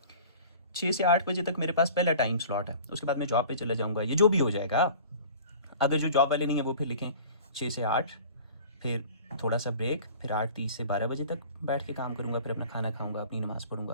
6 से 8 बजे तक मेरे पास पहला टाइम स्लॉट है, उसके बाद मैं जॉब पे चला जाऊँगा, ये जो भी हो जाएगा। अगर जो जॉब वाले नहीं है वो फिर लिखें 6 से 8, फिर थोड़ा सा ब्रेक, फिर 8:30 से 12 बजे तक बैठ के काम करूँगा, फिर अपना खाना खाऊँगा, अपनी नमाज़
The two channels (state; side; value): inverted; both; correlation -0.43